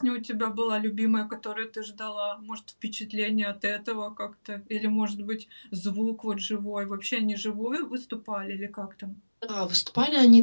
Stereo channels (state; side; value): inverted; both; correlation -1.00